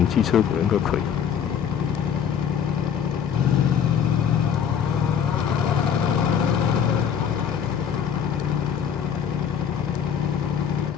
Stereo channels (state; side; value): quieter; right; 8.1 dB